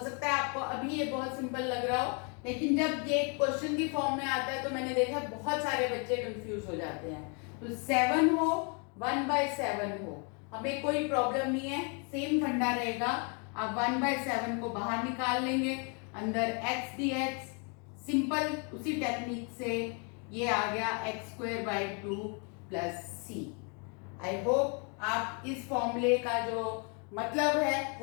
है आपको अभी ये बहुत सिंपल लग रहा हो, लेकिन जब ये क्वेश्चन की फॉर्म में आता है तो मैंने देखा बहुत सारे बच्चे कंफ्यूज हो जाते हैं। तो 7 हो 1/7 हो, हमें कोई प्रॉब्लम नहीं है, सेम फंडा रहेगा। आप 1/7 को बाहर निकाल लेंगे, अंदर x dx, सिंपल उसी टेक्निक से ये आ गया x² 2 + c। आई होप आप इस फॉर्मूले का जो मतलब है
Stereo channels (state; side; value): quieter; right; 36.4 dB